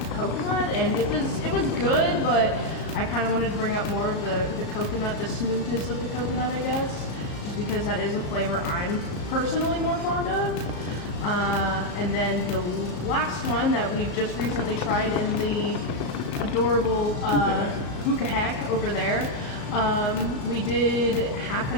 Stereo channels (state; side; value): late; right; 35 ms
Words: coconut, and it was good, but I kind of wanted to bring out more of the coconut, the smoothness of the coconut, I guess, just because that is a flavor I'm personally more fond of. And then the last one that we've just recently tried in the adorable hookah hack over there, we did half